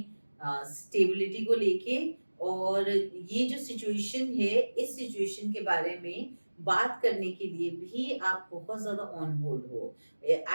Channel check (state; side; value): inverted; both; correlation -1.00